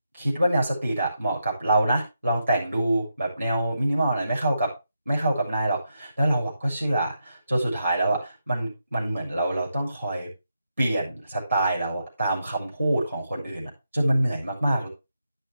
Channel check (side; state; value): both; inverted; correlation -0.84